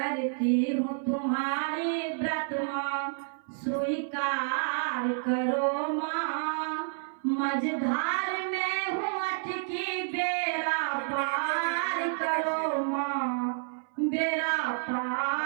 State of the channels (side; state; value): left; silent; 57 dB below the other